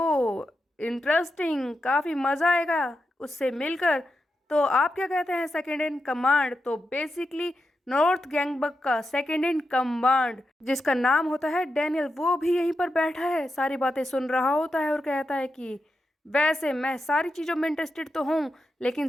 इंटरेस्टिंग, काफ़ी मज़ा आएगा उससे मिलकर। तो आप क्या कहते हैं सेकंड इन कमांड? तो बेसिकली नॉर्थ गैंगबक का सेकंड इन कमांड जिसका नाम होता है डैनियल, वो भी यहीं पर बैठा है, सारी बातें सुन रहा होता है और कहता है कि वैसे मैं सारी चीज़ों में इंटरेस्टेड तो हूँ, लेकिन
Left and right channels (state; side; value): normal; both; correlation 0.88